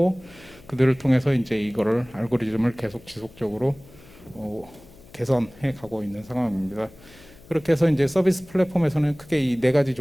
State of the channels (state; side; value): noise; left; hum, 23 dB below the sound